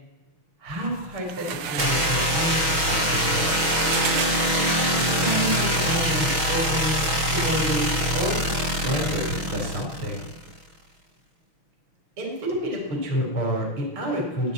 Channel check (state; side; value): late; left; 6.3 ms